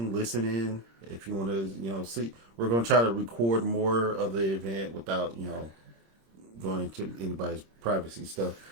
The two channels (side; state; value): left; late; 26 ms